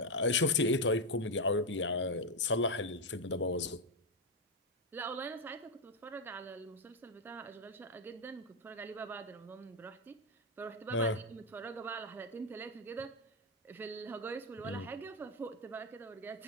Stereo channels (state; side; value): normal; both; correlation 0.04